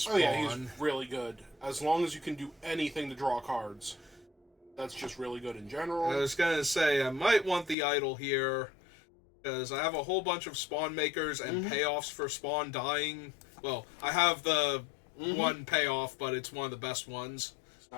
Oh yeah, he's really good. As long as you can do anything to draw cards. That's just really good in general. I was gonna say, I might want the Idol here, because I have a whole bunch of spawn makers and payoffs for spawn dying. Well, I have the one payoff, but it's one of the best ones.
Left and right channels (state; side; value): drops out; right; at 7.8 s